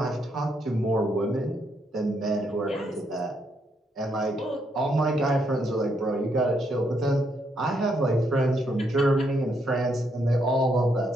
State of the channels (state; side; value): normal; both; correlation 0.76